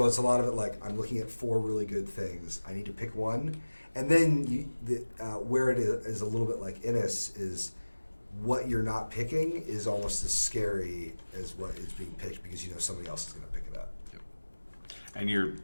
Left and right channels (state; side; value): inverted; both; correlation -1.00